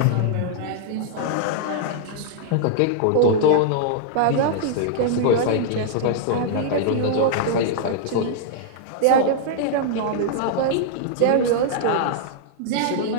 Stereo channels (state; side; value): different; both; correlation -0.01